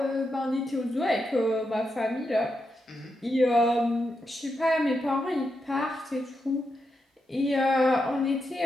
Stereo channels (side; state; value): both; normal; correlation 0.85